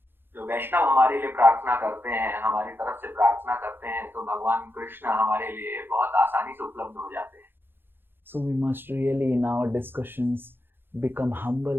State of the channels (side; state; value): left; late; 0.10 ms